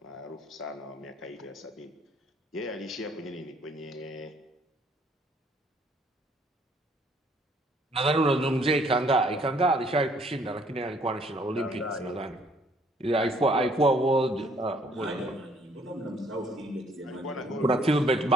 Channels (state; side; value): normal; both; correlation 0.63